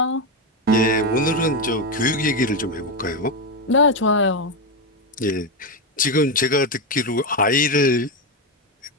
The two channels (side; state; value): both; normal; correlation 0.09